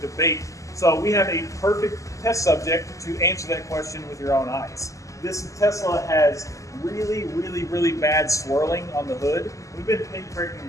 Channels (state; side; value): late; right; 0.16 ms